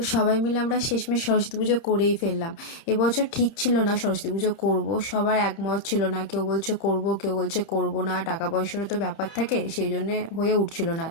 সবাই মিলে আমরা শেষমেশ সরস্বতী পুজো করেই ফেললাম। এবছর ঠিক ছিল না সরস্বতী পুজো করব, সবার একমত ছিল না, কেউ বলছে করব কেউ বলছে করব না, টাকা পয়সারও তো ব্যাপার থাকে, সেই জন্যে হয়ে উঠছিল না।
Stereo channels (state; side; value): late; right; 31 ms